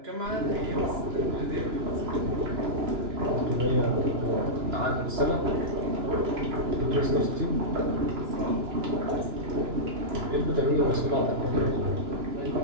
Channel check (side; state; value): left; late; 2.9 ms